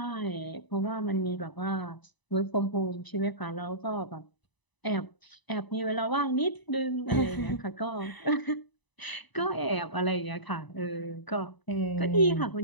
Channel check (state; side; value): late; right; 1.0 ms